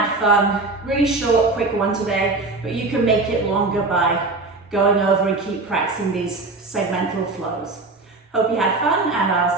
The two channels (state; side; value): quieter; left; 3.4 dB